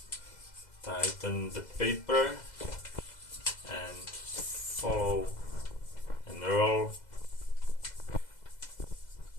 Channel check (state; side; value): late; right; 2.0 ms